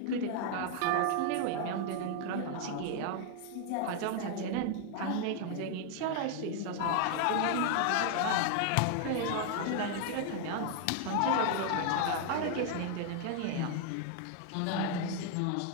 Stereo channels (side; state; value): both; different; correlation 0.00